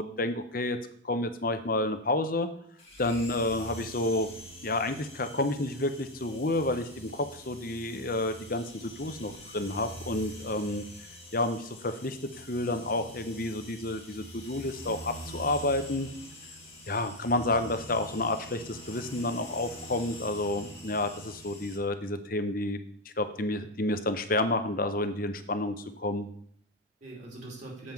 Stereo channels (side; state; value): both; normal; correlation 0.08